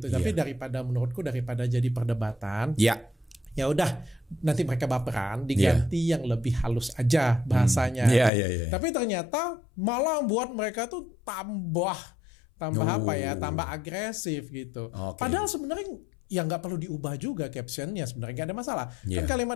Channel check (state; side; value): drops out; right; at 8.3 s